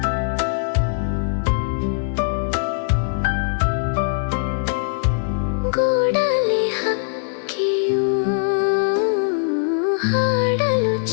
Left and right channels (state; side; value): silent; right; 55 dB below the other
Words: ಗೂಡಲಿ ಹಕ್ಕಿಯು ಹಾಡಲು